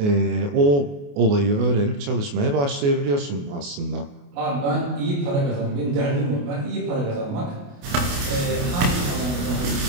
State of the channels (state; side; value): late; left; 28 ms